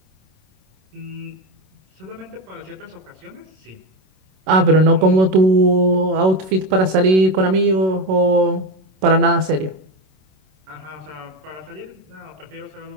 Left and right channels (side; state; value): left; late; 27 ms